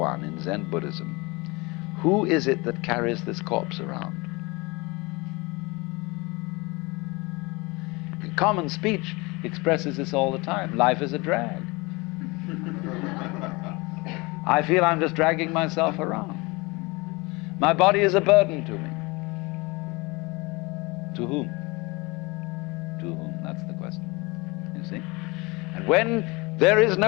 in Zen Buddhism. Who is it that carries this corpse around? Common speech expresses this all the time. Life is a drag. I feel I'm just dragging myself around. My body is a burden to me. To whom? To whom? That's the question. You see? And when there is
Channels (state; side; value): quieter; right; 25.2 dB